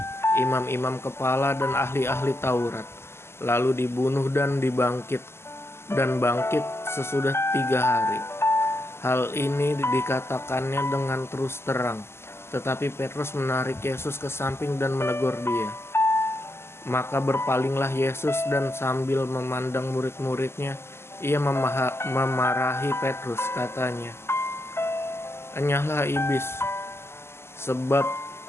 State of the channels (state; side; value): late; right; 0.12 ms